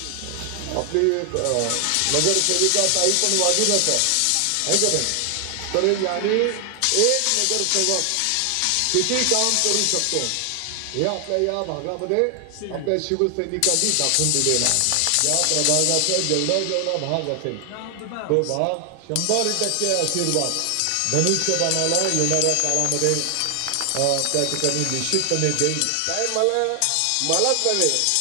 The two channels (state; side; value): different; both; correlation 0.00